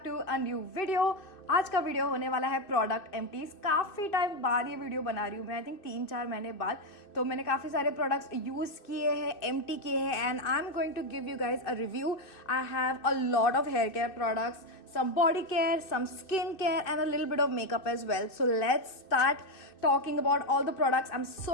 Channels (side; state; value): right; late; 2.6 ms